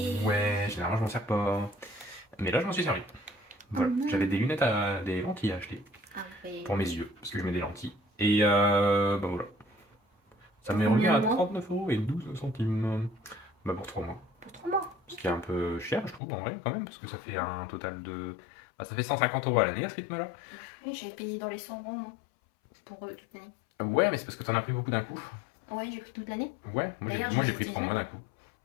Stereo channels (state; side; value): drops out; right; at 16.2 s